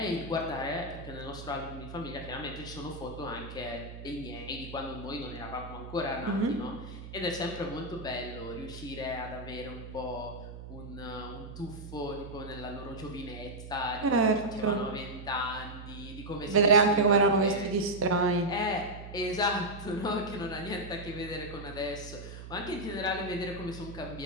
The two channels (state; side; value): noise; right; hum, 12 dB below the sound